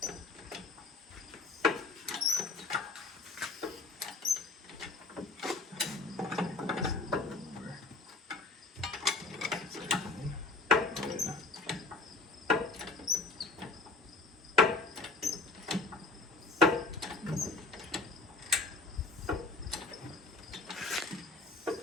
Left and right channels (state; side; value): quieter; right; 3.5 dB